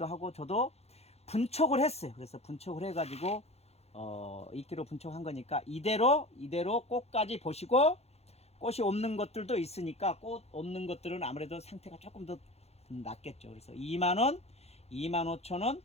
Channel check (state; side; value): late; right; 0.30 ms